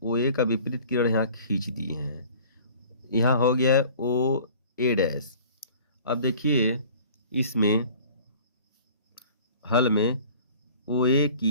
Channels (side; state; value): both; inverted; correlation -0.47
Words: OA का विपरीत किरण यहाँ खींच दिए हैं। यहाँ हो गया है OA'। अब देखिए इसमें हल में OA